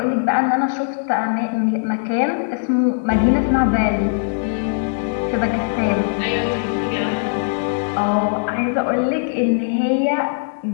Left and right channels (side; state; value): right; silent; digital silence